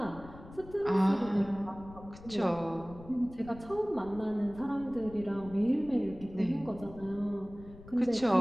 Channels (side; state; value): left; noise; rumble, 17 dB below the sound